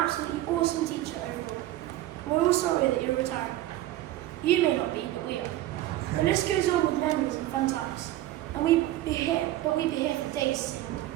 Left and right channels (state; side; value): quieter; left; 15.0 dB